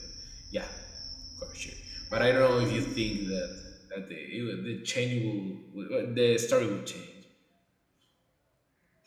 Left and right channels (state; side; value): identical; both; correlation 1.00